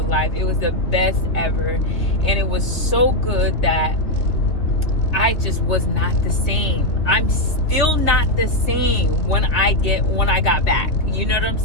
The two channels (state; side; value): late; right; 3.2 ms